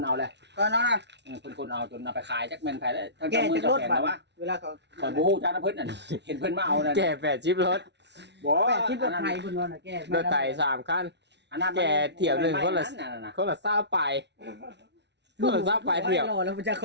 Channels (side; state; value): left; late; 0.50 ms